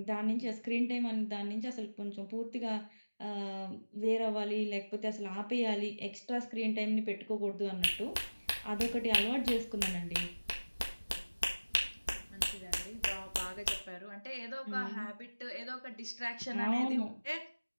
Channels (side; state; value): both; inverted; correlation -1.00